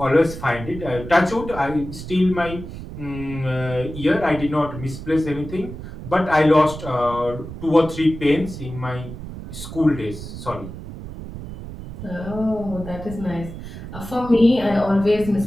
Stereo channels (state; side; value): noise; right; rumble, 11 dB below the sound